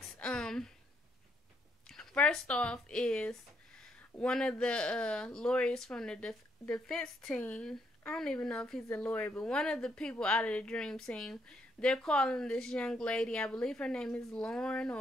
First off is one of the lawyers from the defense team. I don't even know if he's a lawyer, but one of the people out of the dream team, they're calling this young lady, I believe her name is Lauren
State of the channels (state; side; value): normal; both; correlation 0.74